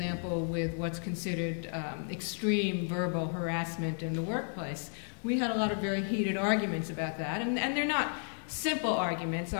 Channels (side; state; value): right; silent; 56 dB below the other